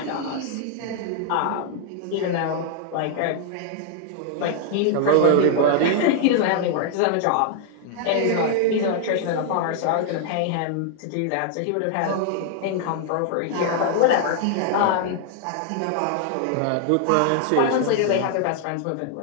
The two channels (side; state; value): both; different; correlation 0.00